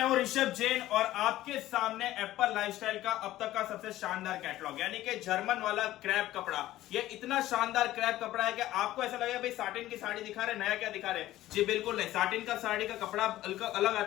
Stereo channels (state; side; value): quieter; right; 15.0 dB